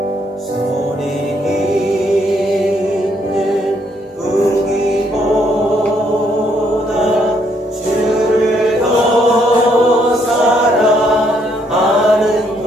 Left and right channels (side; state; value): both; normal; correlation 0.71